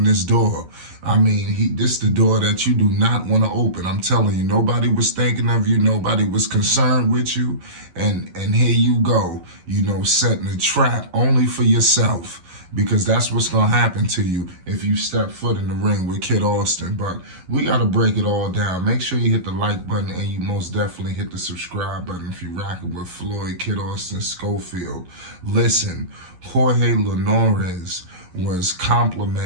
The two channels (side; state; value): left; late; 11 ms